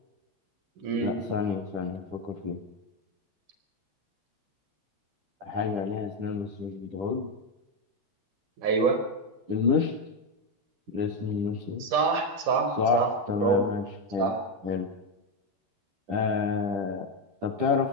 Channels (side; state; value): left; late; 10 ms